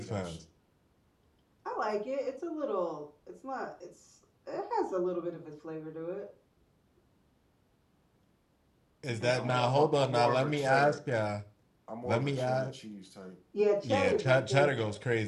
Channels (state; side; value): identical; both; correlation 1.00